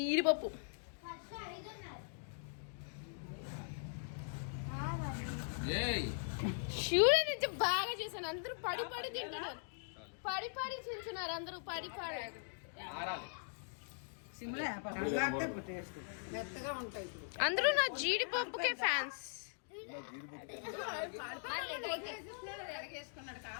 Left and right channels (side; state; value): right; silent; digital silence